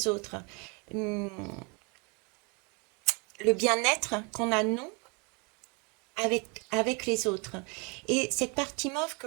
autres. Hum, le bien-être qu'on a nous avec les autres. Et cette partie mauve que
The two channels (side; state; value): left; quieter; 31.8 dB